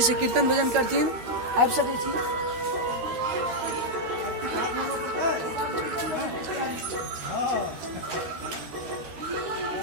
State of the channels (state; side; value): late; left; 12 ms